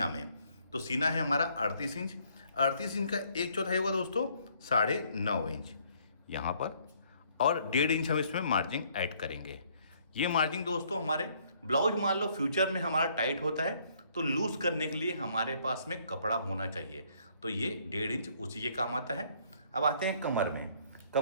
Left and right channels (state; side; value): inverted; both; correlation -0.65